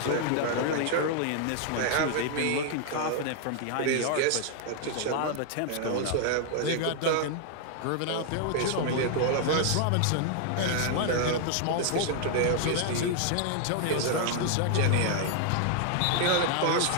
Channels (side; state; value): both; different; correlation 0.00